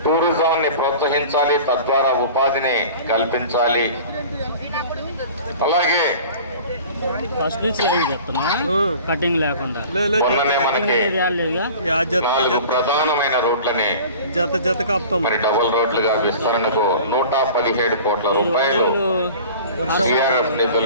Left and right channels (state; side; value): inverted; both; correlation -0.41